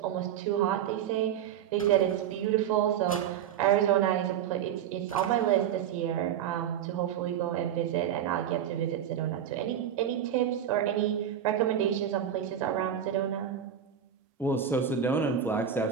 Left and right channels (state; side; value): quieter; left; 9.4 dB